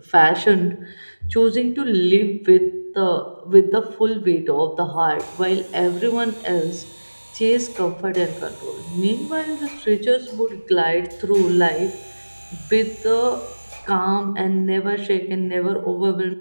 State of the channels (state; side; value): inverted; both; correlation -1.00